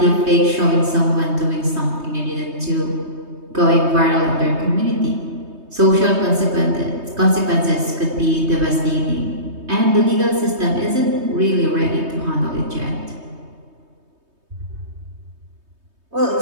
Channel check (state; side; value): late; left; 3.2 ms